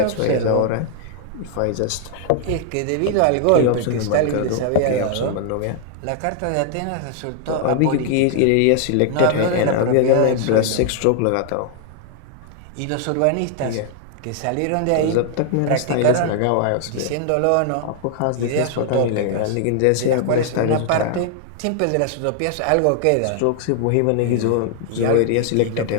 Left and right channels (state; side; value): different; both; correlation 0.00